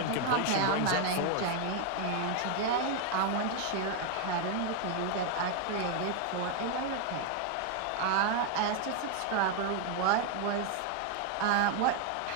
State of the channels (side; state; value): both; different; correlation 0.01